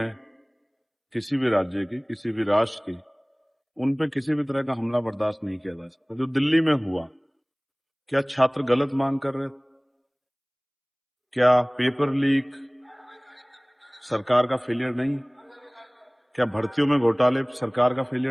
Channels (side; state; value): both; identical; correlation 1.00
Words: किसी भी राज्य की, किसी भी राष्ट्र की। उन पे किसी भी तरह का हमला बर्दाश्त नहीं किया जा सकता। जो दिल्ली में हुआ, क्या छात्र गलत मांग कर रहे थे? क्या पेपर लीक सरकार का फेलियर नहीं? क्या भर्तियों में घोटाले सरकार का